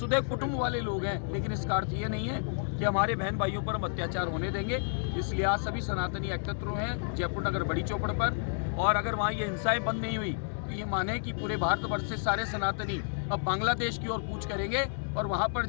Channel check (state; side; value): silent; right; digital silence